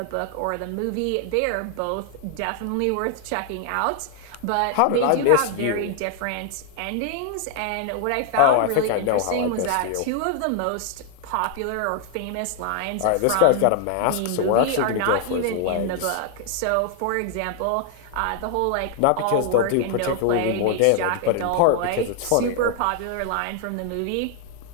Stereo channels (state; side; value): different; both; correlation 0.00